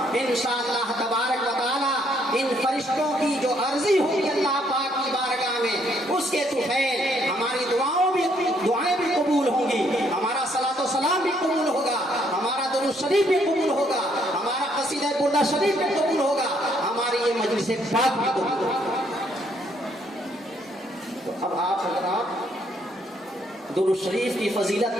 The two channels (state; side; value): normal; both; correlation 0.69